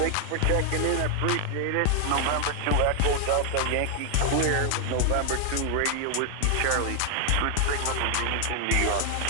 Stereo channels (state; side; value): different; both; correlation 0.00